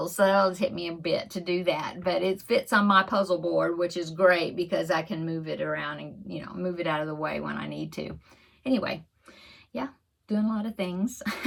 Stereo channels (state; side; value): identical; both; correlation 1.00